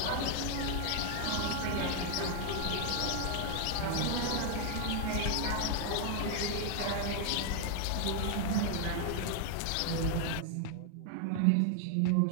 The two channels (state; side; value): different; both; correlation 0.00